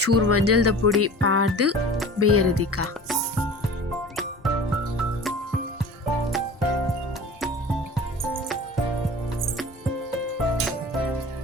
ಚೂರು ಮಂಜಲ್ದ ಪುಡಿ ಪಾಡ್ದು ಬೇಯರೆದಿಕ್ಕ.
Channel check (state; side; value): normal; both; correlation 0.39